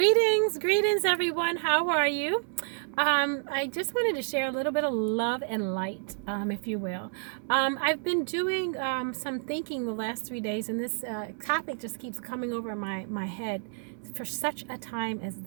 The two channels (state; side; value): silent; left; 58 dB below the other